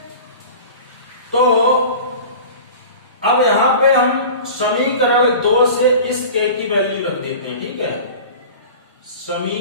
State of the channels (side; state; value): both; inverted; correlation -0.37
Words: तो अब यहां पे हम समीकरण 2 से इस k की वैल्यू रख देते हैं। ठीक है,